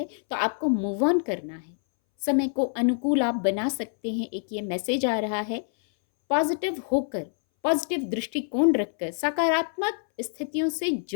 तो आपको मूव ऑन करना है, समय को अनुकूल आप बना सकते हैं। एक ये मैसेज आ रहा है, पॉजिटिव होकर, पॉजिटिव दृष्टिकोण रखकर, सकारात्मक स्थितियों से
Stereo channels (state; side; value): silent; right; 61 dB below the other